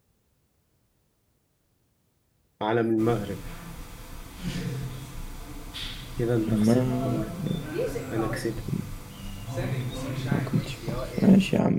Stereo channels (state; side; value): identical; both; correlation 1.00